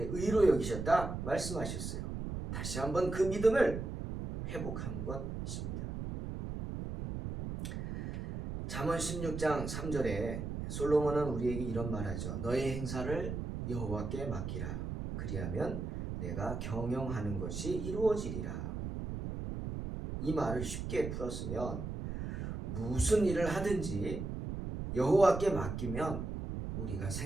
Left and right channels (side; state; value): right; noise; rumble, 5 dB below the sound